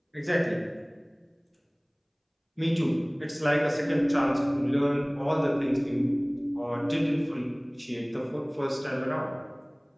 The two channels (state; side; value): identical; both; correlation 1.00